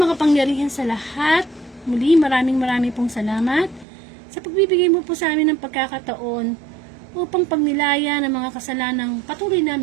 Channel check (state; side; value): drops out; left; at 3.9 s